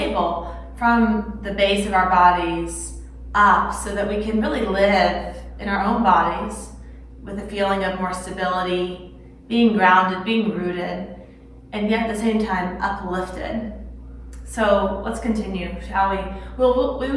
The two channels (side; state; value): both; identical; correlation 1.00